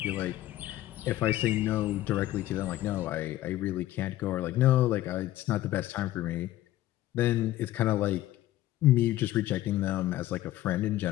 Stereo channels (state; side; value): quieter; right; 14.9 dB